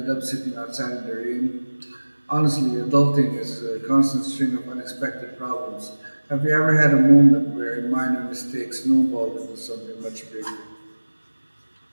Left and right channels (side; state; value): both; inverted; correlation -1.00